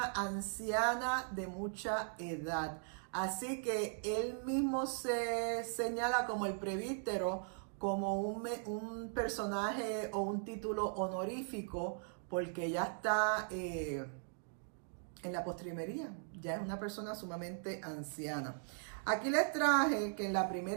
anciana de mucha edad. Así que él mismo se señala como el presbítero, como un personaje o un título honorífico, porque ya está en la postrimería, ya es una persona sumamente anciana. Aquí les traje que en la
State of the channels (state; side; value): silent; left; digital silence